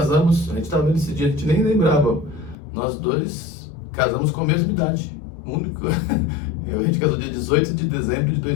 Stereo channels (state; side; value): drops out; right; at 2.6 s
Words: a gente tava vendo esse dia, a gente nem lembrava. Nós dois casamos com a mesma idade. Único. A gente casou dia 18 de dezembro de